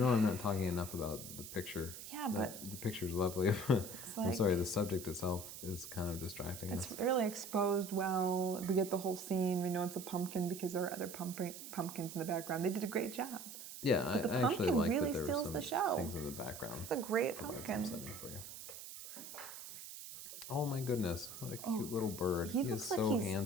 I'm not talking enough about the picture. Yeah, but the picture's lovely. I'm like, sorry, the subject itself is kind of distracting it's us. really exposed well. We get the whole scene. We know it's a pumpkin because there are other pumpkins in the background. They did a great job. Yeah, But the I actually pumpkin like really that there were steals some the show. things in the background. It's a great Provide some pumpkin. setting for you. Oh my goodness, what a cute little bird. He is looks like so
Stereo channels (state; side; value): noise; right; hiss, 11 dB below the sound